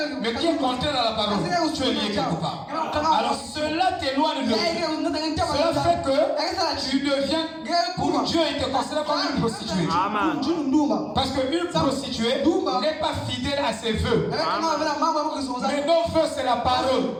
Mais qui est contraire à la parole, tu es lié quelque part. Alors cela t'éloigne de Dieu. Cela fait que tu deviens, pour Dieu, il te considère comme une prostituée. Parce qu'une prostituée n'est pas fidèle à ses vœux. Mais nos vœux, c'est la parole.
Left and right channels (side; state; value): both; identical; correlation 1.00